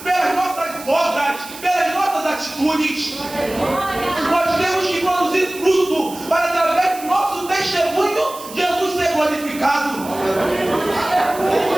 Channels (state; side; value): noise; right; hiss, 15 dB below the sound